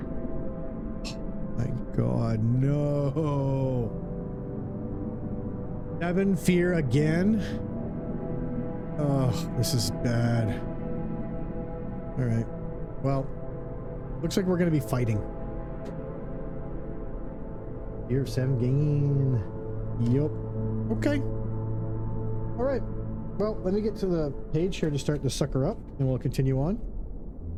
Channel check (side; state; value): both; identical; correlation 1.00